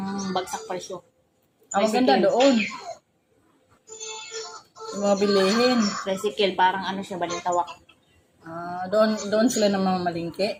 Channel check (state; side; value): identical; both; correlation 1.00